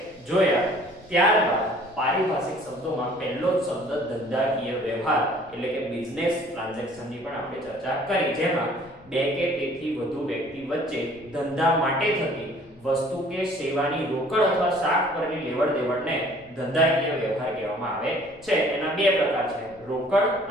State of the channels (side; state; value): left; noise; rumble, 28 dB below the sound